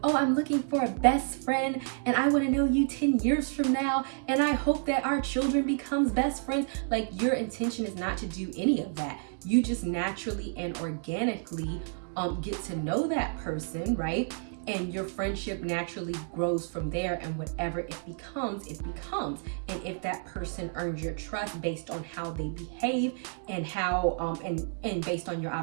oh, I'm looking for a best friend and I want to know you 10 years from now and I hope that our children becomes best friends. Like, your intention is not to do any of that. You just naturally and organically get to know that person, right? And your friendship naturally grows from there, and whatever it becomes, it becomes. And if that person earns your trust based on how they behave and how and based on your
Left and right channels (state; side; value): silent; left; 58 dB below the other